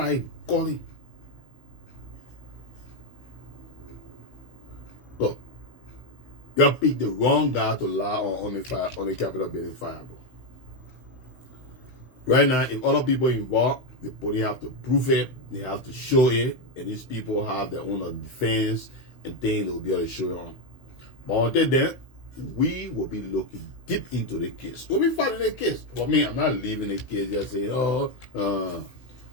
calling. Look, you picked the wrong guy to lie on the fire, on the Capitol building fire, bro. Right now, if other people involved, the police have to prove it, they have to show it, and these people have their own defense and things they will be able to show you on. But until then, we will be looking deep into the case. We'll be fighting the case. For me, I'm not leaving the case just saying, we'll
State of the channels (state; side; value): late; right; 16 ms